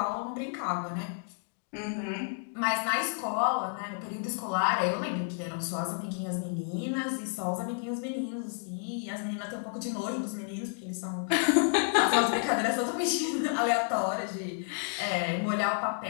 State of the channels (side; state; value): right; silent; 57 dB below the other